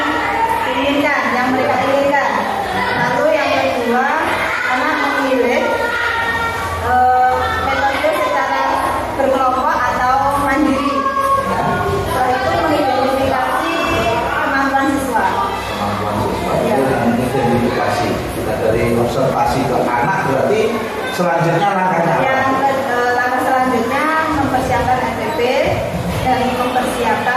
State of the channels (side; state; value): both; identical; correlation 1.00